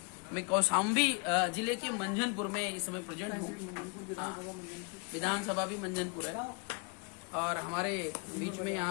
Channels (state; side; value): quieter; right; 33.0 dB